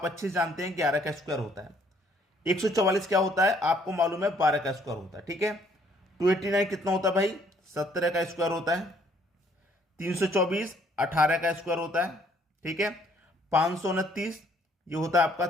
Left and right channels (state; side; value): normal; both; correlation 0.64